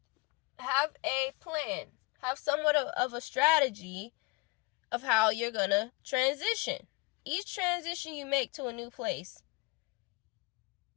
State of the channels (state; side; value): quieter; right; 24.8 dB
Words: have a plan. Have somewhat of a strategy of how you're going to transition. Each transition you make to a new place,